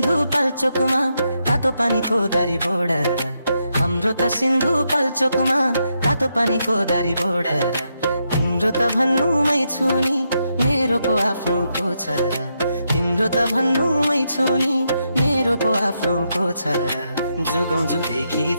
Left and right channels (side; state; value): both; inverted; correlation -0.81